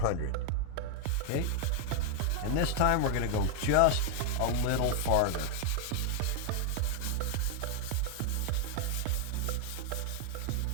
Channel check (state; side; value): different; both; correlation 0.00